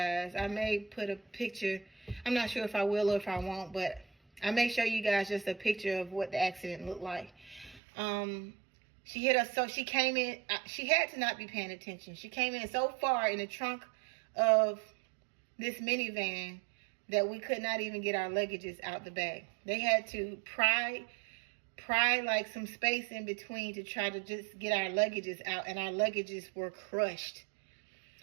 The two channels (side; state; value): left; drops out; at 7.8 s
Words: I may put a picture. I'm not sure if I will or if I won't, but I may show you guys just a picture of what the accident looked like. She hit us, so she came in. She had to not be paying attention. She came in so far in the trunk of this minivan that we could not even get our luggages out the back. They had to pry like some space in between to try to just get our luggages out, and our luggages were crushed.